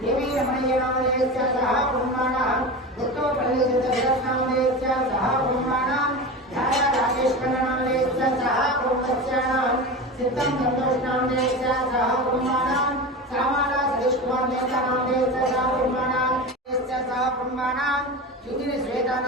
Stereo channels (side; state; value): both; normal; correlation 0.26